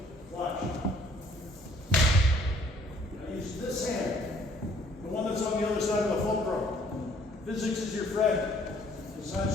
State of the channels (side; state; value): both; normal; correlation 0.60